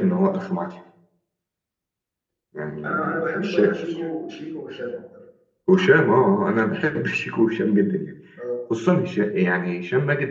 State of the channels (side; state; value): both; identical; correlation 1.00